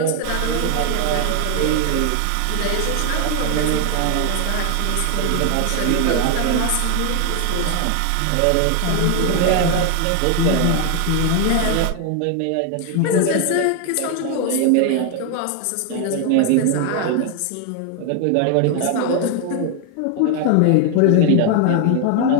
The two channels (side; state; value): both; different; correlation 0.00